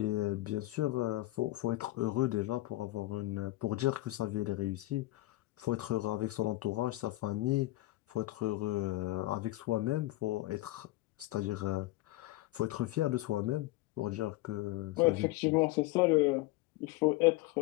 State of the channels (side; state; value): right; quieter; 18.2 dB